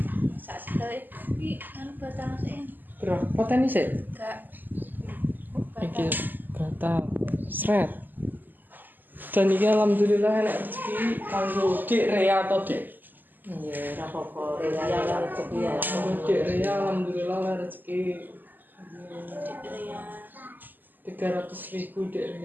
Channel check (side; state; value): left; late; 0.088 ms